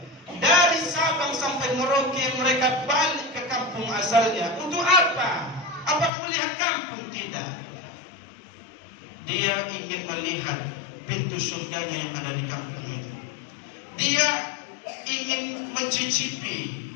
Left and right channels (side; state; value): right; drops out; at 6.1 s